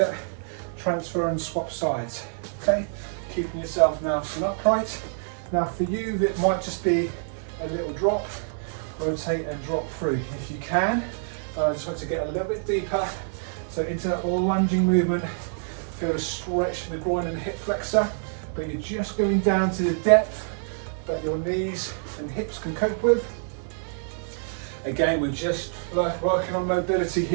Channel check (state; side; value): silent; left; 61 dB below the other